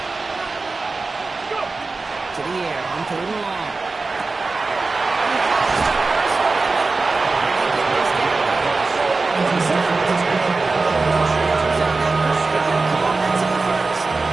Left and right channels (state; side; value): quieter; left; 3.8 dB